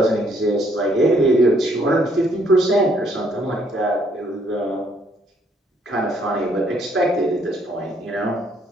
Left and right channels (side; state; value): both; normal; correlation 0.67